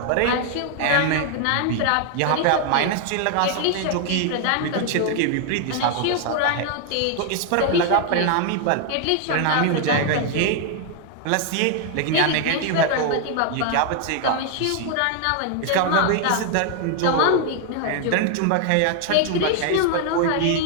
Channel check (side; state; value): both; different; correlation 0.00